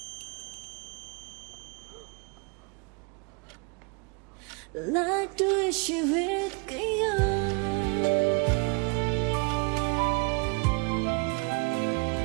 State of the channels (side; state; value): left; quieter; 32.9 dB